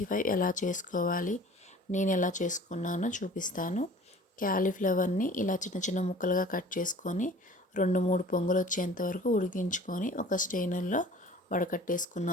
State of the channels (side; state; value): both; normal; correlation 0.46